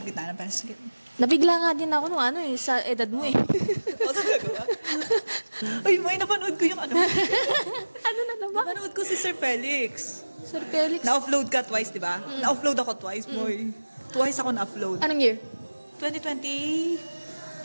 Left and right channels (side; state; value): both; inverted; correlation -1.00